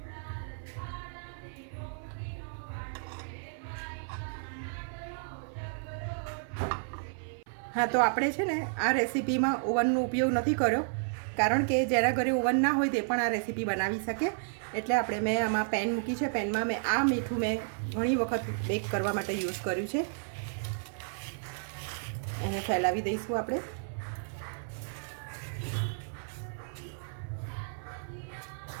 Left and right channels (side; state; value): left; silent; 56 dB below the other